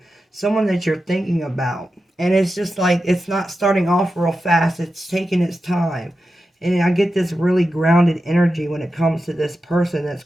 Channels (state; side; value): normal; both; correlation 0.91